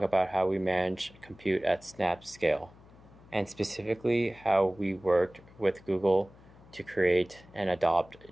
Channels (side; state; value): left; noise; hum, 24 dB below the sound